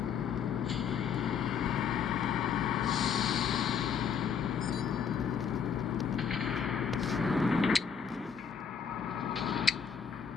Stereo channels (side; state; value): right; quieter; 6.9 dB